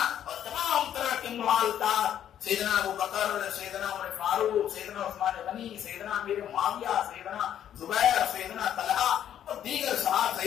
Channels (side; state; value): right; quieter; 10.3 dB